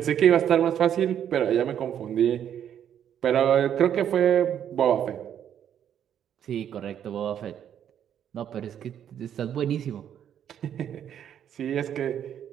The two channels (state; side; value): quieter; left; 9.5 dB